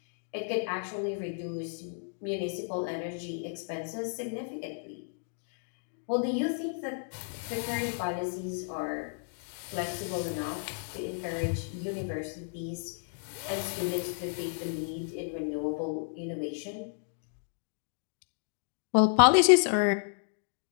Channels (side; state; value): right; silent; digital silence